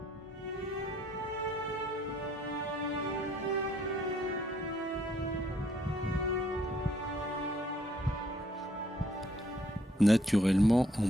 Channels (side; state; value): both; normal; correlation 0.66